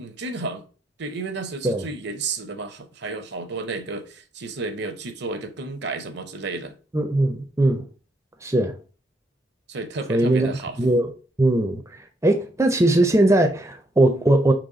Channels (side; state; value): both; normal; correlation 0.75